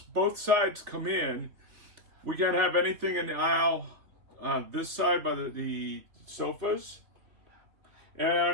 sides come in, we can't have anything in the aisle on this side by the sofas,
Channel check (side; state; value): left; late; 3.5 ms